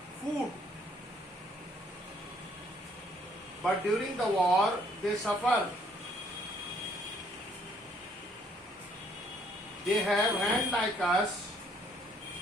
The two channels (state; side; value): normal; both; correlation 0.65